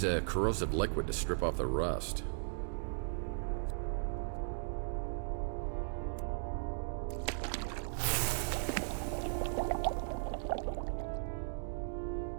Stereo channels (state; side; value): silent; left; digital silence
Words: a corrosive liquid to strip off the rust.